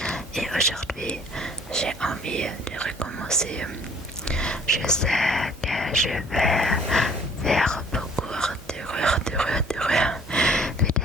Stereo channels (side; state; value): both; normal; correlation 0.55